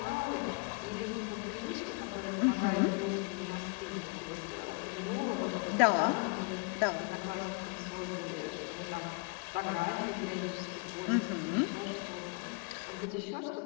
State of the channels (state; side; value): quieter; right; 31.6 dB